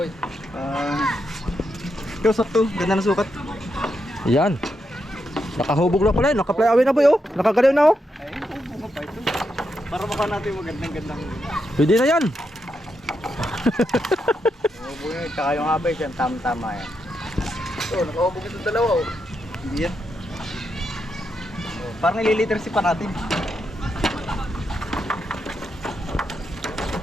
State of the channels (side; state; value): both; normal; correlation 0.83